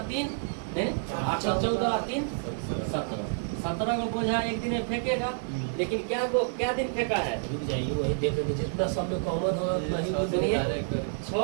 3 8 और 14 और 3 17। 17 को बोझा एक दिन में फेंकेगा, लेकिन क्या दिन फेंका है? वही देख रहे थे जितना सब में कॉमन हो वही सुनिए,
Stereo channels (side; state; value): left; silent; digital silence